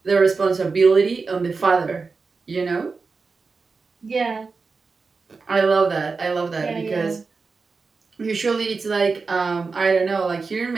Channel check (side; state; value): left; quieter; 4.5 dB